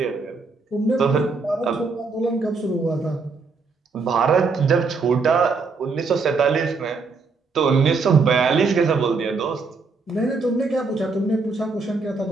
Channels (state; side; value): quieter; left; 4.4 dB